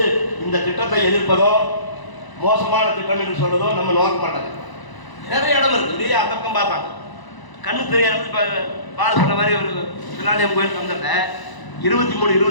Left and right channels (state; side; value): late; right; 1.0 ms